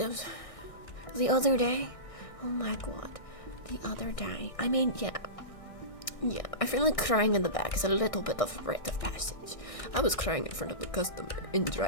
the other day. Oh my god, the other day. I mean, yeah, I feel like crying in the back is a little bit of a rite of passage. I was crying in front of the customer in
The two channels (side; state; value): right; late; 1.6 ms